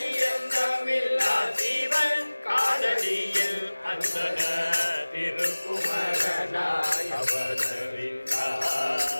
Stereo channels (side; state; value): both; inverted; correlation -1.00